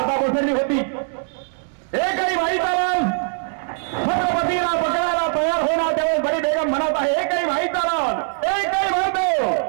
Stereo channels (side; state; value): left; silent; 65 dB below the other